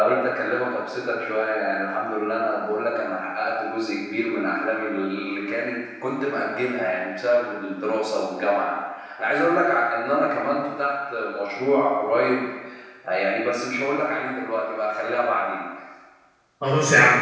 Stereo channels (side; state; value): both; identical; correlation 1.00